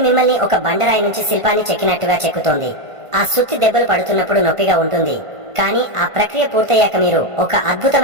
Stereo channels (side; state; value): left; late; 1.5 ms